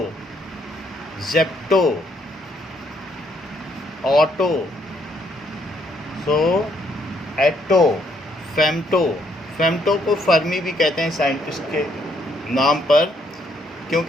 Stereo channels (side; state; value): both; normal; correlation 0.70